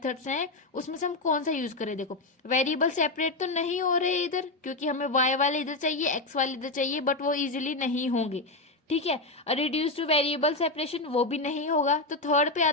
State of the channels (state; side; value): quieter; right; 3.0 dB